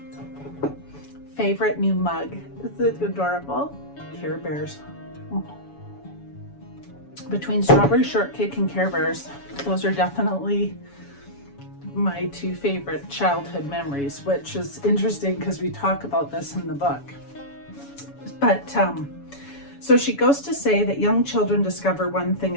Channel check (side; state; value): right; late; 7.1 ms